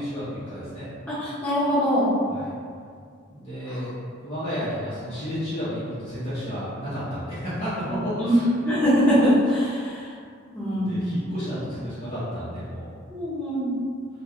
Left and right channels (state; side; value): normal; both; correlation 0.58